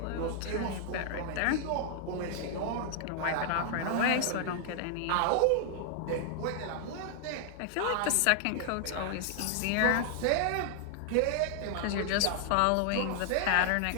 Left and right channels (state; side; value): different; both; correlation 0.00